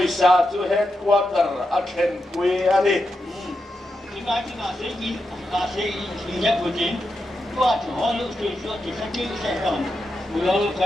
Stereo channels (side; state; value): both; normal; correlation 0.87